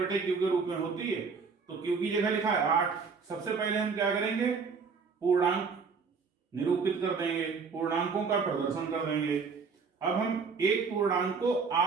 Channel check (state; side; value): quieter; left; 5.2 dB